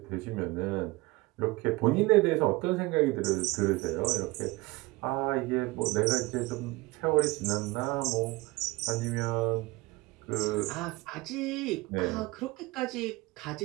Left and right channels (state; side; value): quieter; left; 22.1 dB